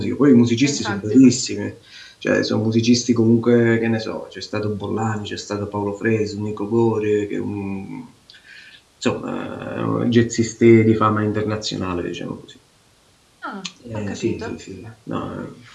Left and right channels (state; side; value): identical; both; correlation 1.00